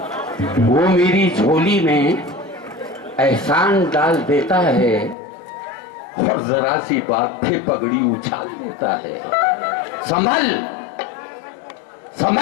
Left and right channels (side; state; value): right; drops out; at 5.2 s